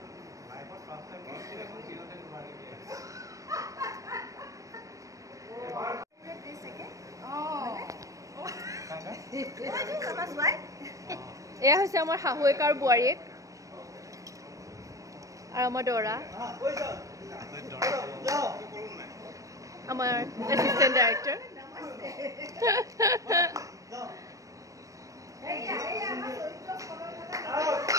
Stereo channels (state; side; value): late; left; 0.16 ms